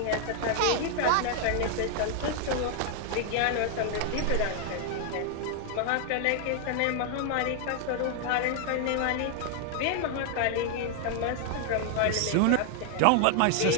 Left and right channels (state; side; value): different; both; correlation 0.00